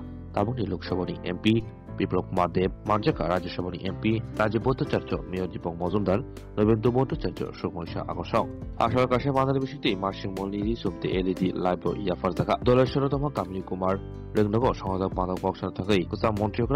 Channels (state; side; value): identical; both; correlation 1.00